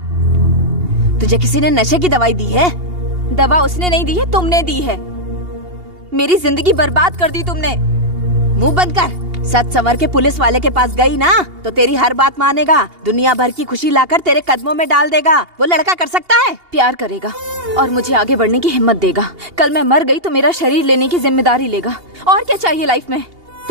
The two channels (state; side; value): late; left; 2.8 ms